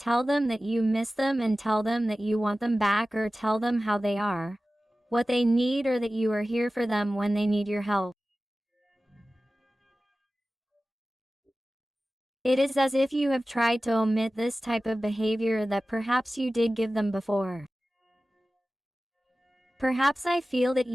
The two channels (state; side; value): normal; both; correlation 0.96